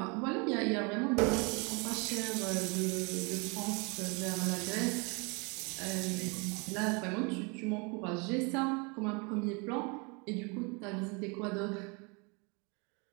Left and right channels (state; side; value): quieter; left; 31.2 dB